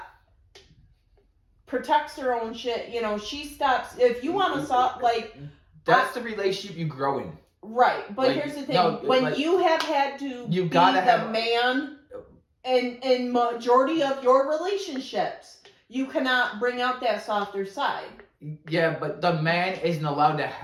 protects her own shit, you know, she stops. If you want to stop, like, That's the relationship you grow in. right. But Like, here's the thing: no, when like, you have had to you be gotta the have- man in majority of your relationships, you cannot bring out that softer side. Yeah, but the man isn't allowed to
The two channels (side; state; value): both; identical; correlation 1.00